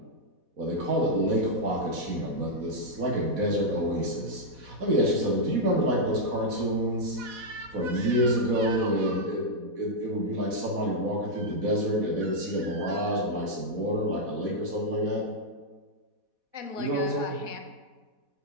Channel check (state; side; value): late; left; 4.1 ms